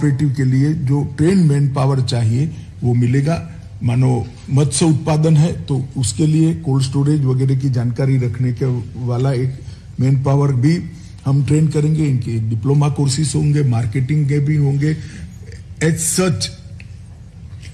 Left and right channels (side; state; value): both; identical; correlation 1.00